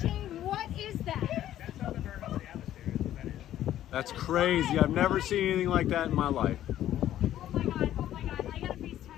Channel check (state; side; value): quieter; right; 12.3 dB